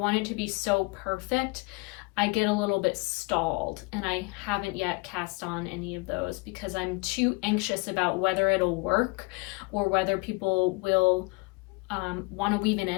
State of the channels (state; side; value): quieter; right; 27.1 dB